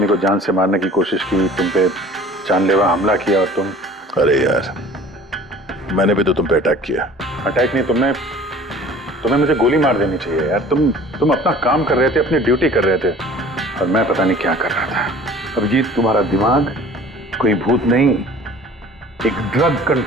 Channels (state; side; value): normal; both; correlation 0.47